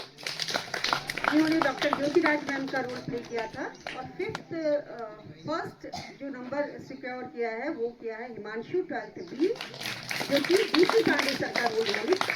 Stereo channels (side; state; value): both; identical; correlation 1.00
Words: जिन्होंने डॉक्टर ज्योतिराज मैम का रोल प्ले किया था। और फर्स्ट जो नंबर सिक्योर किया है वो किया है हिमांशु 12th B, जो कि DC पांडे सर का रोल उन्होंने